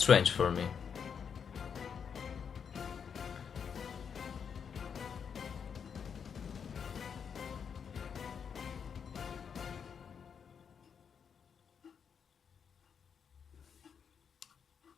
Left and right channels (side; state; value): right; quieter; 7.0 dB